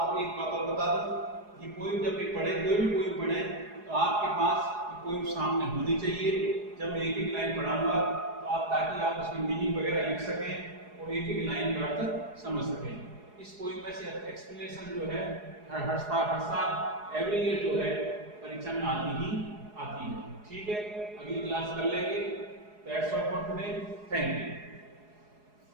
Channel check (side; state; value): left; late; 4.8 ms